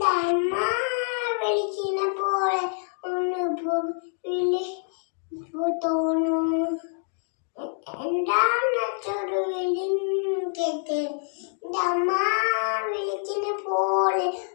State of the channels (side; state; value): right; silent; 57 dB below the other